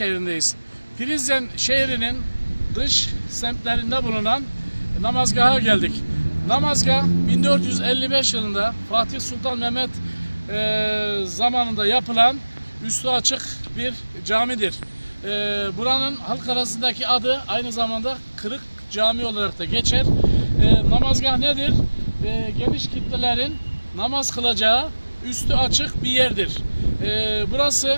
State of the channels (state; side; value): inverted; both; correlation -1.00